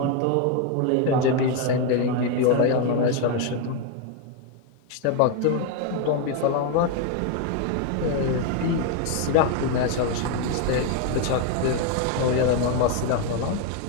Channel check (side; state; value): both; different; correlation 0.01